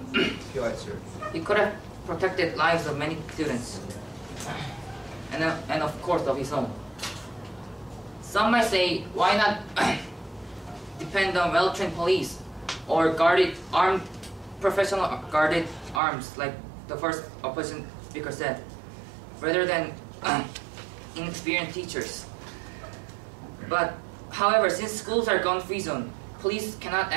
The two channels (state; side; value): drops out; left; at 16.0 s